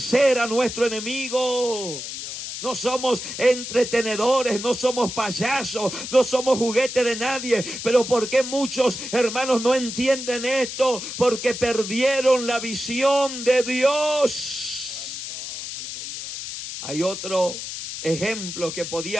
a nuestro enemigo. No somos entretenedores, no somos payasos, no somos juguete de nadie. Pero ¿por qué muchos hermanos no entienden esto? Porque perdieron la visión de Dios. Hay otro ejemplo que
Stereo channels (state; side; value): noise; left; hiss, 7 dB below the sound